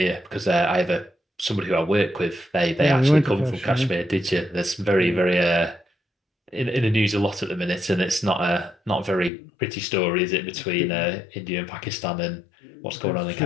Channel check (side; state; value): right; drops out; at 9.3 s